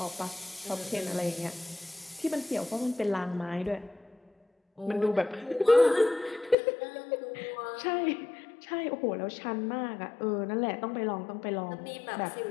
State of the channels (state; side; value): drops out; right; at 6.6 s